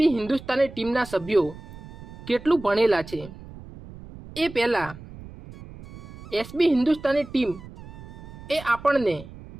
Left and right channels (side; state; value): right; noise; rumble, 16 dB below the sound